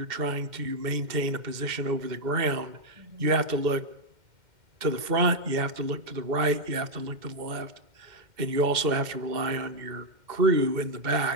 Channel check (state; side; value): late; left; 2.1 ms